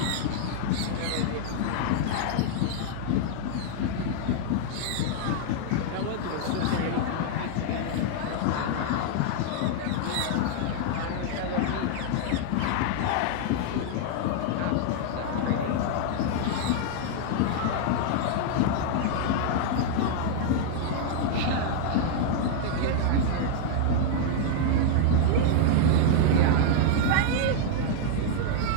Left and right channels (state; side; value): different; both; correlation 0.00